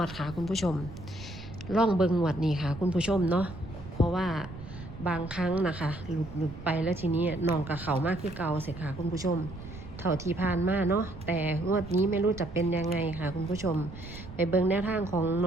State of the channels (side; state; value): right; noise; rumble, 13 dB below the sound